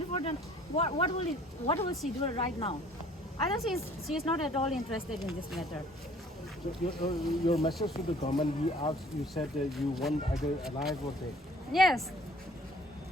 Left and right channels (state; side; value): normal; both; correlation 0.55